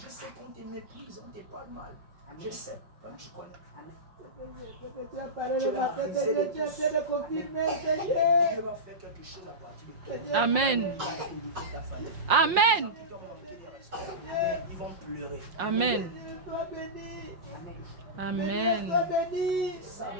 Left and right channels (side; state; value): left; late; 5.7 ms